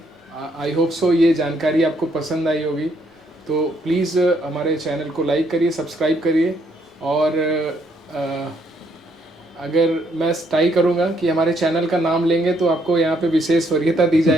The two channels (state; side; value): normal; both; correlation 0.71